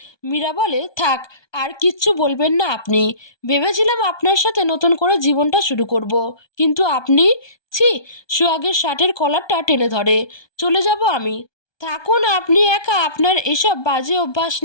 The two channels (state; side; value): late; right; 1.2 ms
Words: মীরা বলে, থাক, আর কিচ্ছু বলবেন না আপনি। ভেবেছিলাম আপনার সাথে নতুন করে জীবনটা শুরু করব, কিন্তু আপনি, ছি। সোহাগের শার্টের কলারটা টেনে ধরে। চলে যাব আমি। থাকুন আপনি একা আপনার এসব বাজে অভ্যাস